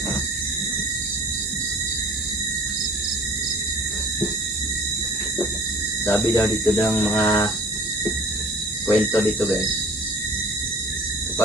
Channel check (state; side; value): normal; both; correlation 0.46